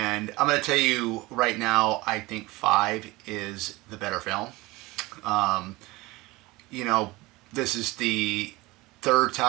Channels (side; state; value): left; quieter; 21.3 dB